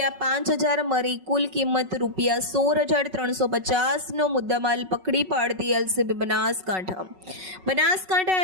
મળી કુલ કિંમત ₹16,350 નો મુદ્દામાલ પકડી પાડતી એલસીબી બનાસકાંઠા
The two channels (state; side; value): late; left; 5.4 ms